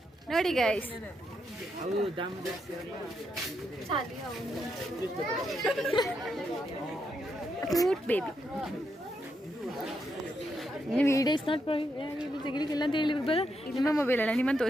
ನೋಡಿ guys. Cute baby. Video is not ತೆಗಿಲಿಕ್ಕಿಲ್ಲ ಅಂತ ಹೇಳಿ ಬರ. ನಿಮ್ಮ ಮೊಬೈಲ್ ಅಲ್ಲ, ನಿಮ್ಮನ್ನು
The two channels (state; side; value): normal; both; correlation 0.81